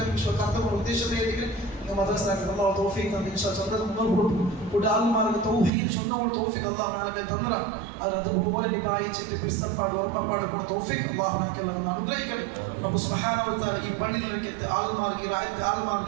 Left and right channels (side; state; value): left; drops out; at 5.7 s